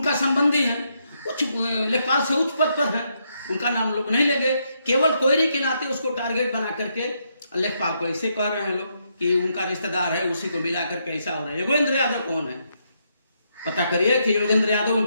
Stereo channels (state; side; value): inverted; both; correlation -0.78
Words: संबंधी है, उच्च लेखपाल से उच्च पद पर है, उनका नाम लोग नहीं लेंगे। केवल कोयरी के नाते उसको टारगेट बना करके लेखपाल को ऐसे कह रहे हैं लोग कि उनका रिश्तेदार है, उसी को मिला करके ऐसा हो रहा है। योगेंद्र यादव कौन है? पता करिए कि योगेंद्र यादव